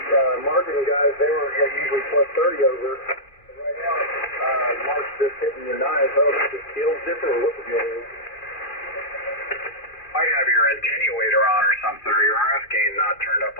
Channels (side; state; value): right; late; 2.4 ms